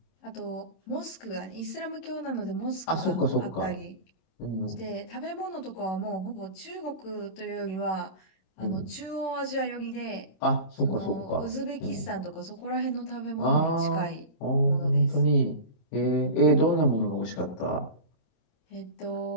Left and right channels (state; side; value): late; right; 26 ms